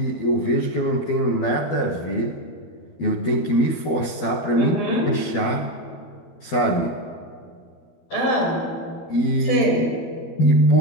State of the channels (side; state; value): right; late; 12 ms